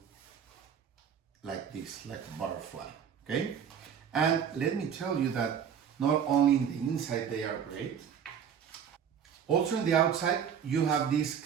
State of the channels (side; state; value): left; quieter; 8.0 dB